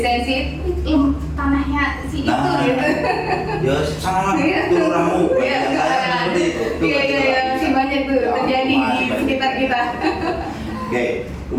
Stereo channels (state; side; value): identical; both; correlation 1.00